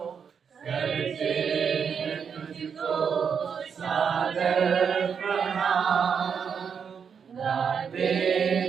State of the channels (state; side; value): quieter; left; 6.8 dB